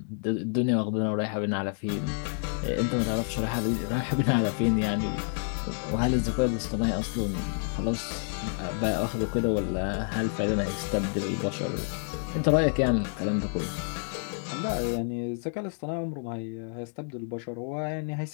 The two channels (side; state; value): right; silent; 59 dB below the other